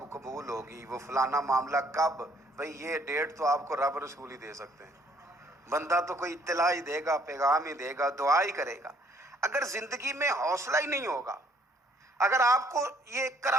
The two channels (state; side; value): normal; both; correlation 0.64